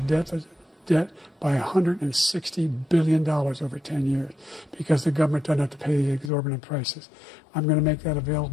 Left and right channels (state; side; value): drops out; right; at 6.3 s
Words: by $160 billion over 10 years because the government doesn't have to pay the exorbitant prices. I'm going to make that